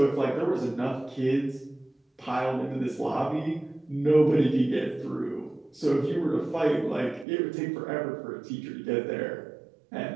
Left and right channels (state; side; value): drops out; left; at 7.2 s